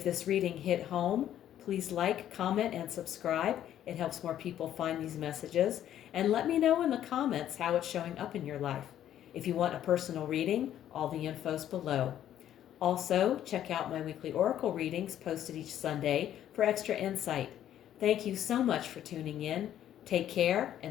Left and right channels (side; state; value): right; quieter; 11.2 dB